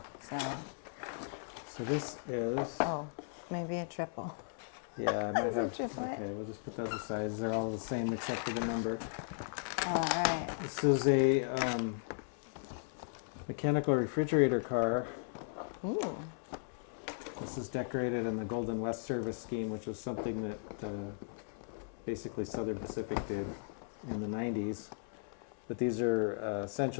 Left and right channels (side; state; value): right; silent; 53 dB below the other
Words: yeah. So this is... Oh, maybe a triple. Yeah, I might That's a have... triplet. Okay, we'll just put those aside. They're all the same except for the number. All right. This is a mechanical refrigerator car. Ooh. This is decorated in the Golden West Service scheme, which was something that basically Southern Pacific did in the 90s. But these are